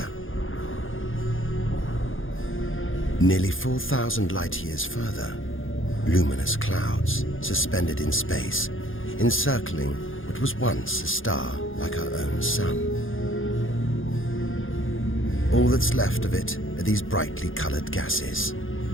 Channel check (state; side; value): late; right; 0.59 ms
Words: Nearly 4,000 light-years further, luminous clouds suspended in space, encircling what was once a star like our own sun. All that's left of it are these brightly colored gases.